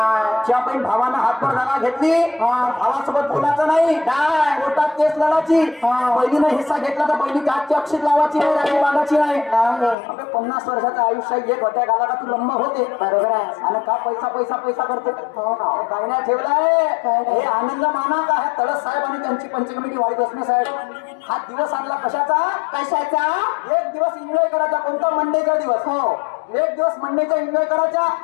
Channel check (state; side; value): drops out; right; at 10.0 s